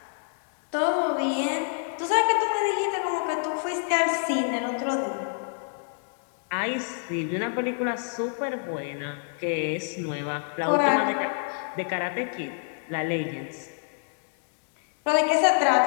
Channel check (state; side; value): silent; right; digital silence